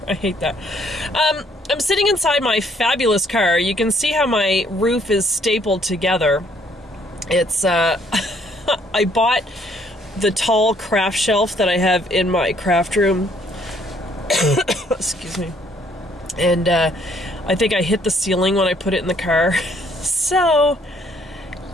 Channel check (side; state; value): both; normal; correlation 0.65